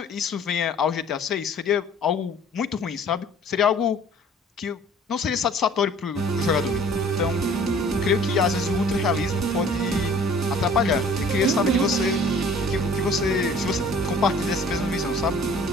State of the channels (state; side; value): normal; both; correlation 0.51